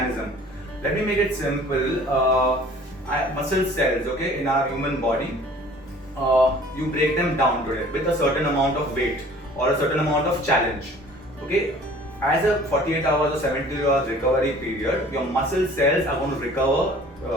Let me make it simple. Muscle cells, okay, in our human body, you break them down today with a certain amount of weight or a certain amount of challenge. Okay, as a 48 hours or 72 hours recovery period, your muscle cells are going to recover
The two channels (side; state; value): both; normal; correlation 0.50